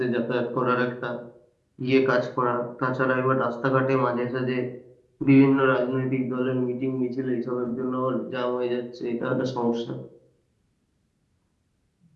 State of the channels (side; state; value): both; identical; correlation 1.00